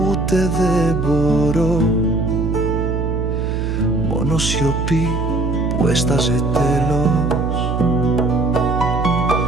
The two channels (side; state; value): right; noise; hum, 2 dB below the sound